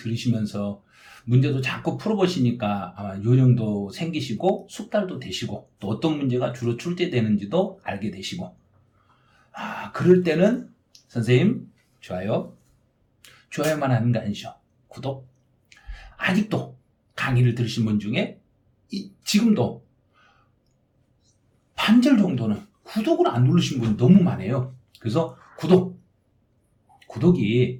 문제도 자꾸 풀어보시니까 아마 요령도 생기시고 숙달도 되시고 또 어떤 문제가 주로 출제되는지도 알게 되시고 그럴 때는 선생님 좋아요만 하는 거 아니죠. 구독. 아직도 강의를 들으신 분 중에 지금도 반절 정도는 구독을 안 누르신 분이 너무 많아요. 그래서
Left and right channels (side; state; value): both; identical; correlation 1.00